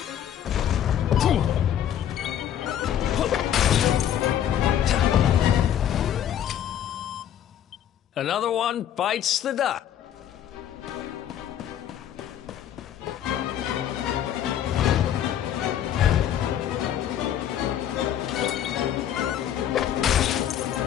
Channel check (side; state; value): right; quieter; 10.3 dB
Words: Another one bites the dust.